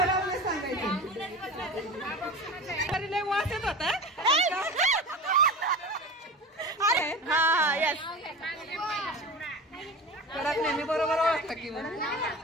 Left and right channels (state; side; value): normal; both; correlation 0.32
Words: सांगायचं. वाचत होता कडक नेहमी बरोबर ओळखता की